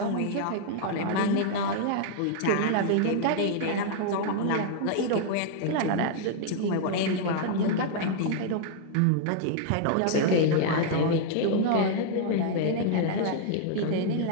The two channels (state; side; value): different; both; correlation -0.01